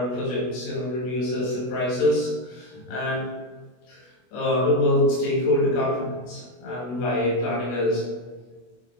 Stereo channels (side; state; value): right; late; 24 ms